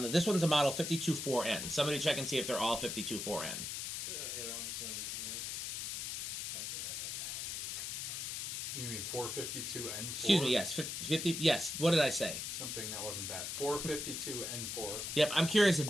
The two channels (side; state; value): left; noise; hiss, 4 dB below the sound